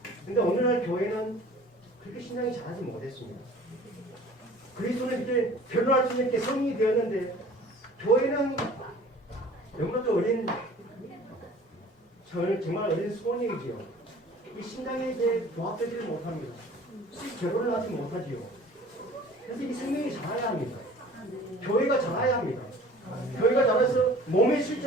근데 오늘날 교회는 그렇게 신장이 자라지 못했습니다. 그리스도는 이제 결혼할 수 있는 게 성인이 되었는데 교회는 너무나도 어린 정말 어린 소년이지요. 이 신장에 이제 부합되지 못합니다. 결혼을 하지 못하지요. 그래서 이 생명이 자라야 합니다. 교회가 자라야 합니다. 교회가 자라서 몸의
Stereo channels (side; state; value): both; normal; correlation 0.47